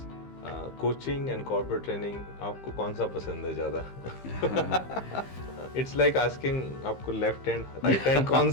coaching and corporate training, आपको कौन सा पसंद है ज़्यादा? इट्स लाइक आस्किंग आपको लेफ्ट हैंड राइट हैंड कौन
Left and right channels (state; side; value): late; right; 15 ms